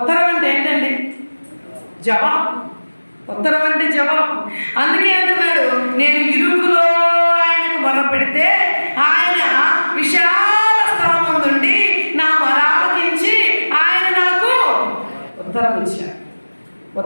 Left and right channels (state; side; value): inverted; both; correlation -1.00